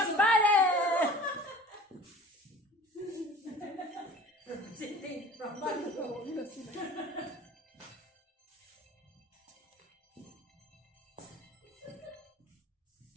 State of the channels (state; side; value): normal; both; correlation 0.44